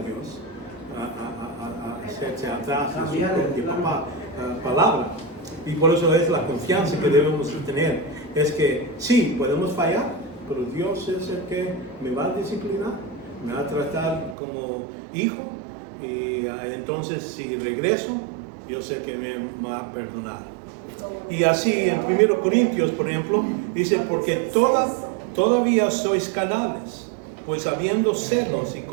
hacerse atrás de su propia palabra. Y por eso es la confianza que debemos tener. Es que sí, podemos fallar, pero Dios es el que me va a disciplinar, me va a tratar como hijo. Y entonces si regreso, yo sé que me va a perdonar. Y así en 1 Corintios, por ejemplo, dice, porque todavía sois carnales, pues habiendo celos y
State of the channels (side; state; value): left; drops out; at 14.4 s